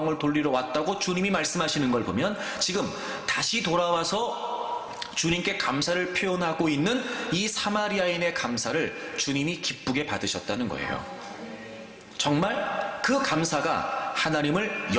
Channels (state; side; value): identical; both; correlation 1.00